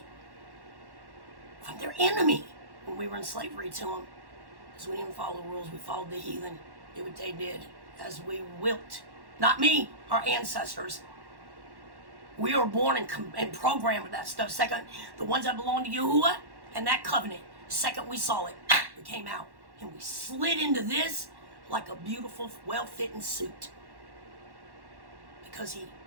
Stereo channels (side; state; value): left; late; 1.1 ms